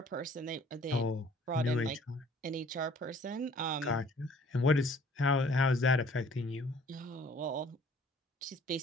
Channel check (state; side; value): normal; both; correlation 0.55